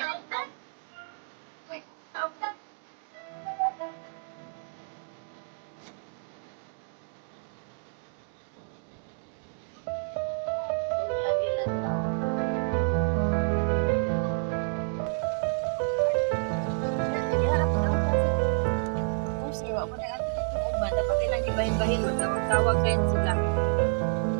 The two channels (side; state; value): left; silent; digital silence